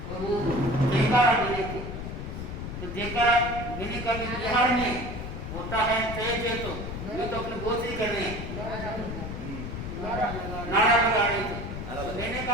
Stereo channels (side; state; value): left; noise; rumble, 7 dB below the sound